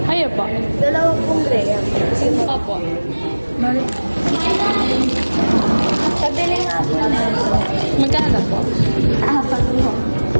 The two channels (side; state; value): both; inverted; correlation -1.00